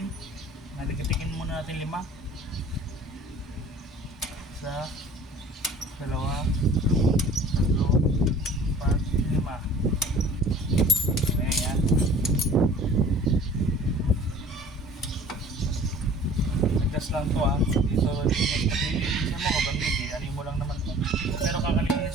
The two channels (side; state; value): both; normal; correlation 0.48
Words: Naligatikin muna natin 5. Isa, 2, 3, 4, 5. Ayan yan. Adjust lang to Dito paglilisan mo o bandit ano mo lang naman to. Pero